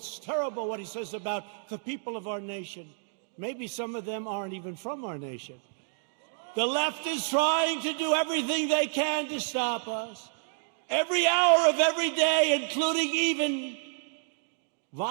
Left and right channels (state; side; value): silent; left; digital silence